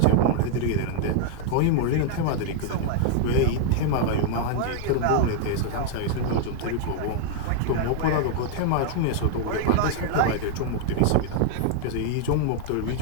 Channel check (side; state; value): both; different; correlation -0.01